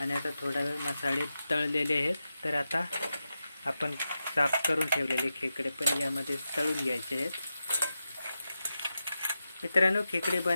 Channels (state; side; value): inverted; both; correlation -0.90